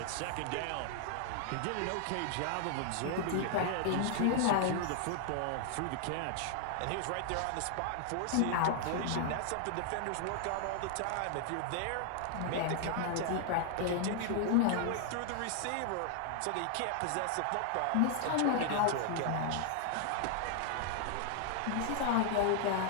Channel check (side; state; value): both; different; correlation 0.00